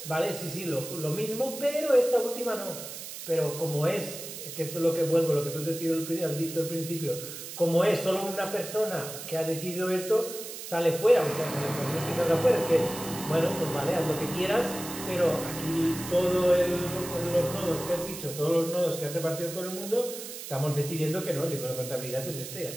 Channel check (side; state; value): right; noise; hiss, 10 dB below the sound